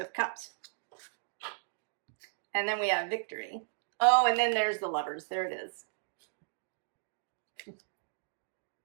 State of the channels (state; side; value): silent; left; digital silence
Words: Cups. And then we have victory. Oh, and then there's the Lovers. There it is.